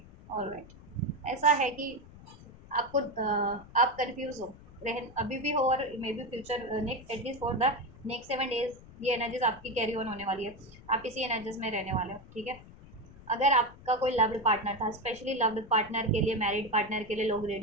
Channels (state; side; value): noise; left; rumble, 20 dB below the sound